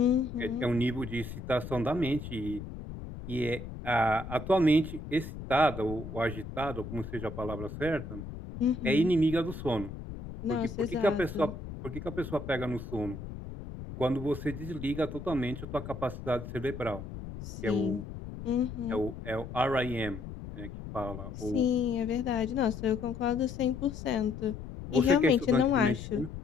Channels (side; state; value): left; noise; rumble, 10 dB below the sound